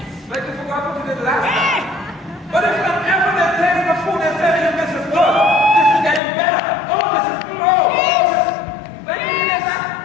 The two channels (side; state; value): right; drops out; at 6.2 s